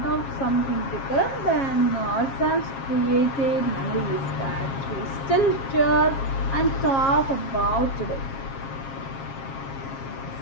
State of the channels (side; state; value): right; late; 7.4 ms